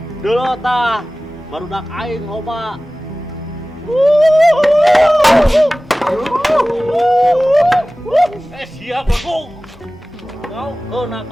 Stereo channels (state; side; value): normal; both; correlation 0.97